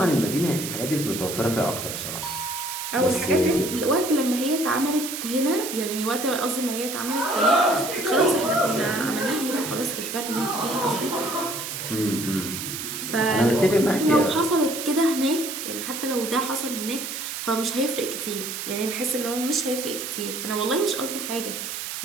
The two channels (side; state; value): right; noise; hiss, 6 dB below the sound